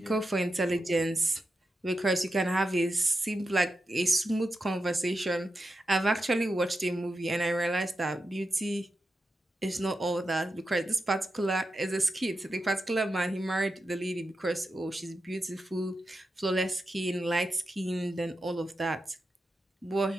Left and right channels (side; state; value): both; normal; correlation 0.89